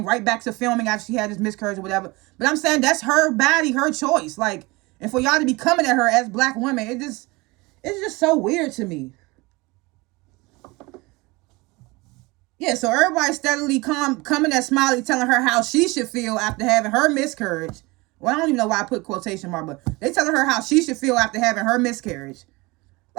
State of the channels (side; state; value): left; quieter; 23.8 dB